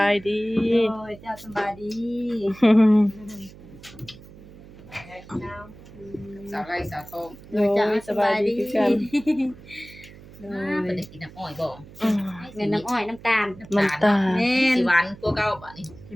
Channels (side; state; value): right; noise; hum, 19 dB below the sound